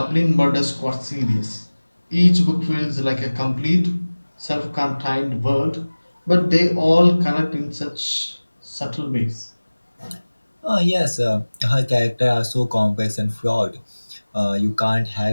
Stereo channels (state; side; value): inverted; both; correlation -1.00